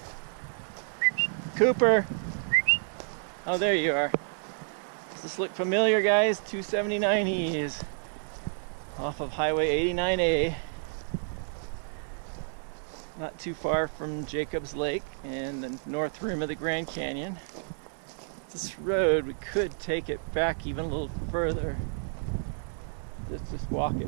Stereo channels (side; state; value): left; silent; digital silence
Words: Cooper. Oh, there you are. Does this look familiar, guys? 279 E's off of Highway 89A. Not too far from Jacobs Lake and the north rim of the Grand Canyon. This road, we could take it back even a little further. Let's just walk